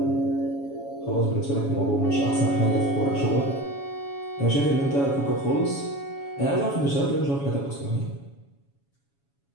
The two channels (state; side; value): late; right; 7.1 ms